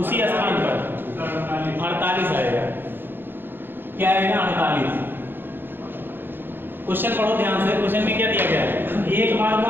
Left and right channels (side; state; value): left; late; 0.099 ms